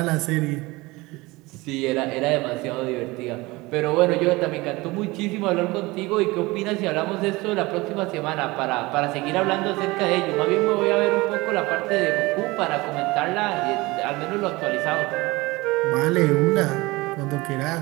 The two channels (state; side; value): quieter; left; 22.0 dB